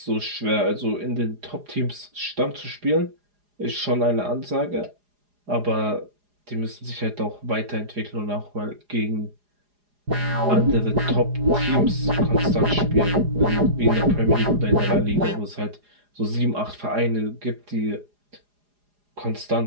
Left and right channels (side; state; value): left; late; 4.9 ms